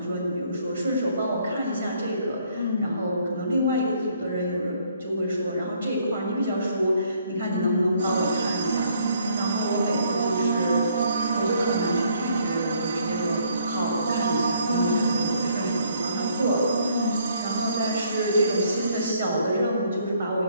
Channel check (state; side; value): inverted; both; correlation -0.66